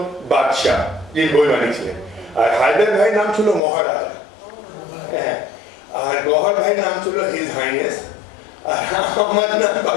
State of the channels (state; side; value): drops out; right; at 3.6 s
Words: বাদশাহ, যিনি বৈমানিক ছিলেন। আর হায়দার ভাই নাম ছিল মহারাজা, হ্যাঁ। আর গহর ভাই নাম ছিল হিজ হাইনেস। আর আমার নাম